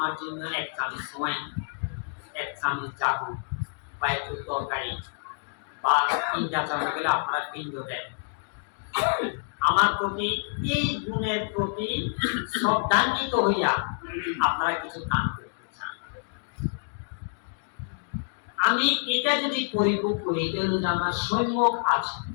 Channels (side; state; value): right; silent; digital silence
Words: জন্য 1 চামচ সময়, 1 চামচ জাদু বা একটু তরকারি বা পিণ্ডাচরণ গেলে আপনারা পিণ্ড দেন। আমার প্রতি এই গুণের প্রতি শ্রদ্ধান্বিত হইয়া আপনারা কিছু দান করতে চান। আমি এটা যদি পরিভোগ করি, এটা হলো যে আমার সম্যক আছে,